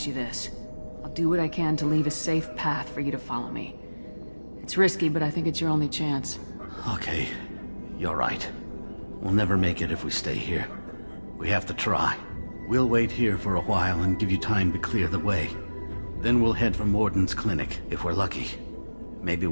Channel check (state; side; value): inverted; both; correlation -1.00